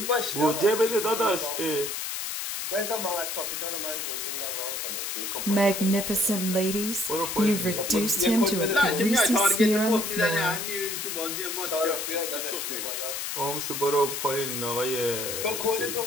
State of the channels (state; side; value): noise; left; hiss, 4 dB below the sound